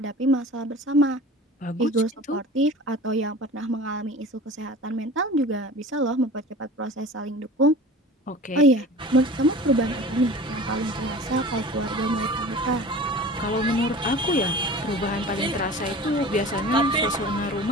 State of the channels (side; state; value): both; normal; correlation 0.39